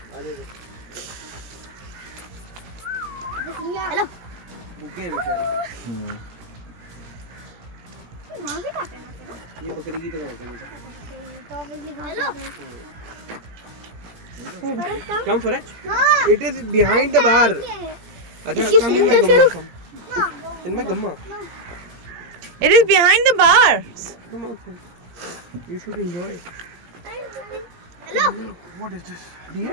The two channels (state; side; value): late; left; 17 ms